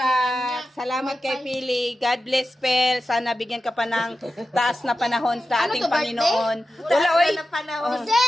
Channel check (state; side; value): normal; both; correlation 0.92